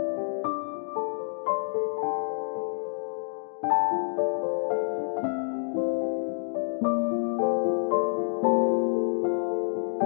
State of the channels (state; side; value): silent; right; 56 dB below the other